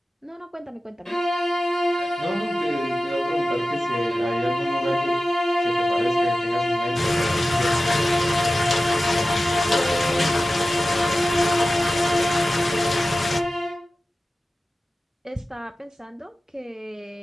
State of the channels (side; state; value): both; normal; correlation 0.94